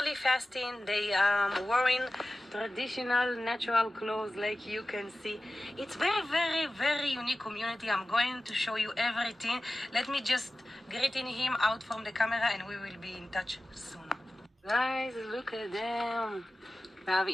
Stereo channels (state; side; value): normal; both; correlation 0.95